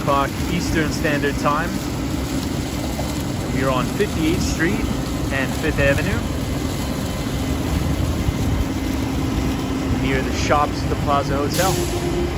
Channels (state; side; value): identical; both; correlation 1.00